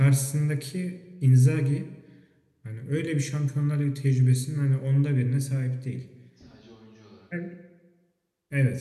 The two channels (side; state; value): both; identical; correlation 1.00